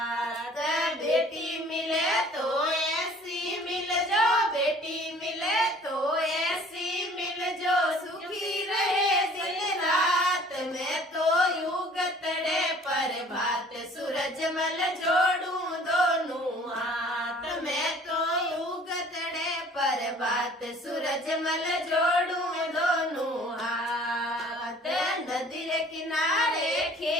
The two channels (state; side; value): normal; both; correlation 0.52